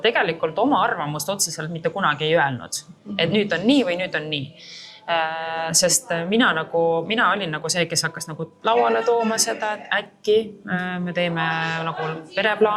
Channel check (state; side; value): identical; both; correlation 1.00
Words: tegelikult oma arvamust otseselt mitte kunagi ei öelnud, et nüüd on nii või nüüd on nii. Sest mina olin nagu see, kes hakkas nagu lauale tooma seda, et äkki me teeme nagu